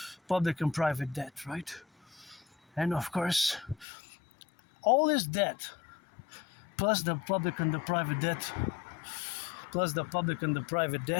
Public and private debt, right? And of course, all this debt, plus the public and the private debt,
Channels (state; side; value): drops out; right; at 3.9 s